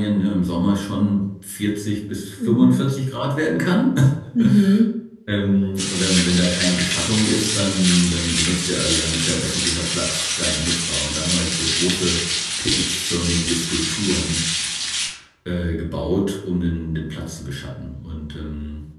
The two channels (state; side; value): identical; both; correlation 1.00